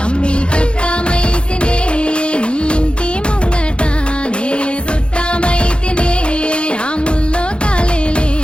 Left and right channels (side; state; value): right; late; 0.056 ms